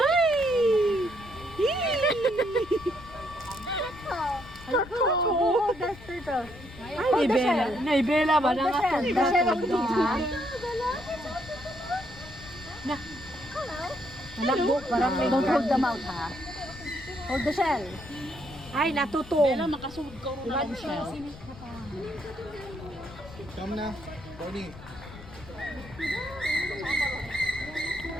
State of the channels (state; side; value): noise; left; rumble, 17 dB below the sound